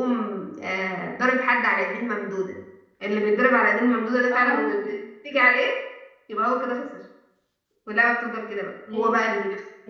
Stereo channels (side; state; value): both; identical; correlation 1.00